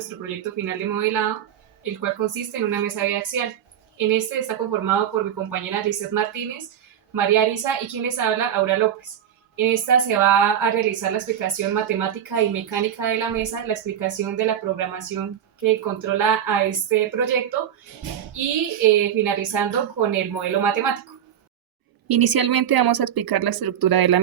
proyecto final de modelado, el cual consiste en una mesa biaxial. En este está conformado por mi compañera Lizeth Martínez, María Arisa y quien les habla, Aura López. En esta se va a realizar la explicación matemática y mecánica de la mesa, la explicación de la programación que controla a este proyecto y finalizando con el modelo matemático. Inicialmente vamos a explicar la estructura de la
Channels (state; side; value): quieter; left; 9.6 dB